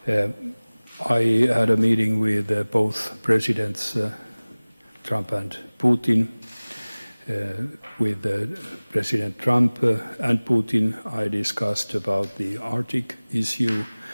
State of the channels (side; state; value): both; inverted; correlation -1.00